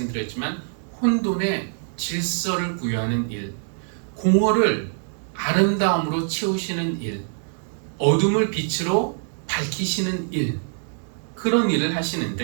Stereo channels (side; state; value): left; silent; digital silence